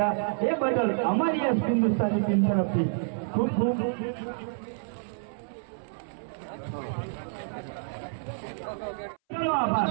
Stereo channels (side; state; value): left; silent; 59 dB below the other